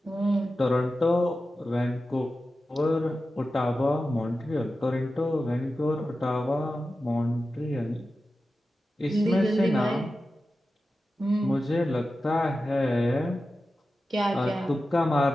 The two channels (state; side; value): normal; both; correlation 0.93